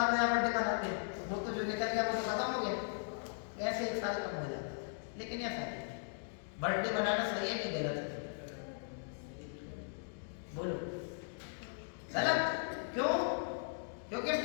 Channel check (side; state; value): right; silent; digital silence